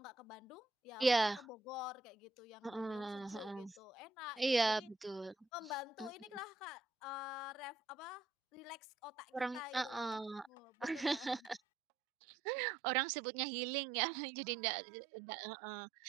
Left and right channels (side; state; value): left; drops out; at 11.6 s